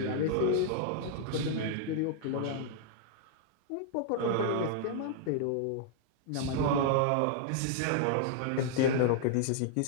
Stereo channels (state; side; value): different; both; correlation -0.01